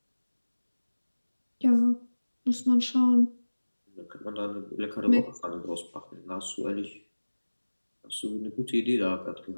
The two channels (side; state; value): both; inverted; correlation -1.00